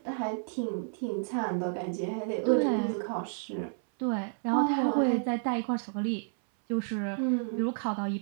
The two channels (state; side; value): silent; left; 57 dB below the other